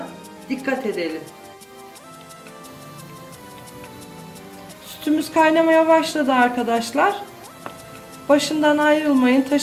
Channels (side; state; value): both; identical; correlation 1.00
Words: dikkat edelim. Sütümüz kaynamaya başladı arkadaşlar. Başından ayrılmayın,